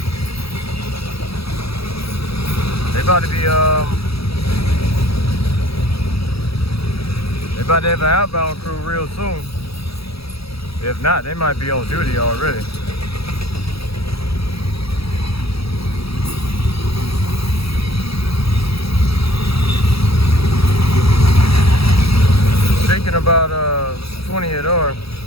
They about to be, they about to have an outbound crew real soon. If not, they might be on duty already. Speaking about 28R,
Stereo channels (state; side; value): late; right; 0.77 ms